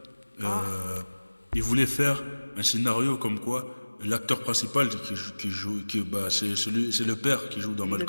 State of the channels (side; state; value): both; inverted; correlation -1.00